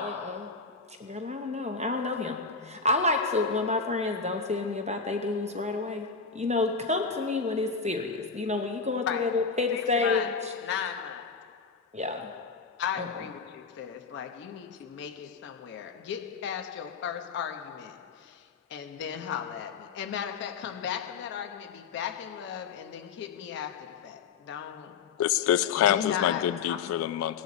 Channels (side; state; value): right; quieter; 5.2 dB